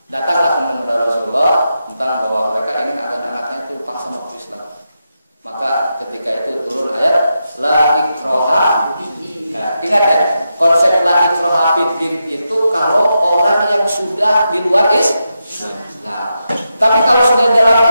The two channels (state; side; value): inverted; both; correlation -0.87